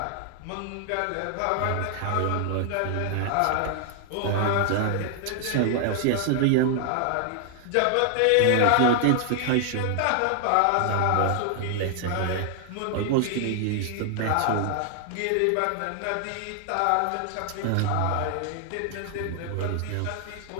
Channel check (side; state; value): both; different; correlation 0.00